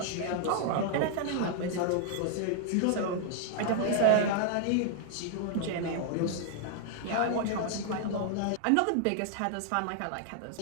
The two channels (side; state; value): both; different; correlation 0.00